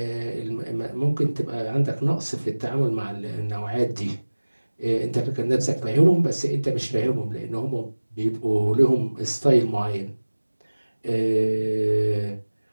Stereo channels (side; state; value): both; inverted; correlation -1.00